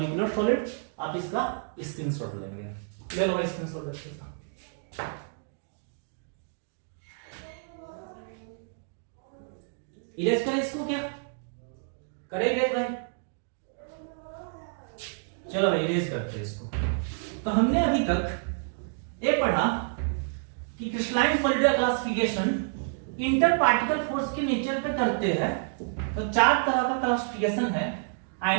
solid. आप इसका स्क्रीनशॉट लेंगे, ले लो भाई स्क्रीनशॉट देखते हैं। इरेज करें इसको, क्या करेंगे भाई? चलो भाई इरेज करते हैं इसको। तो हमने अभी तक ये पढ़ा कि क्रिस्टलाइन सॉलिड का क्लासिफिकेशन इंटर पार्टिकल फोर्स के नेचर पे करते हैं। तो चार तरह का क्लासिफिकेशन है:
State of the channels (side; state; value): left; silent; digital silence